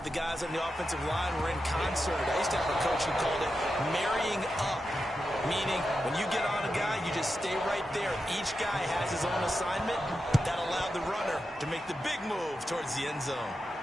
the guys on the offensive line were in concert. I used to have a coach who called it marrying up. meaning when you get on a guy, you just stay right there. Each guy has his own assignment. That allowed the runner to make the big move towards the end zone.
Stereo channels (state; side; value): normal; both; correlation 0.89